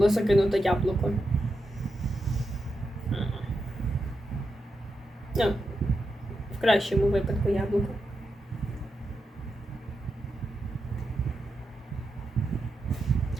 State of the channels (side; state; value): both; normal; correlation 0.87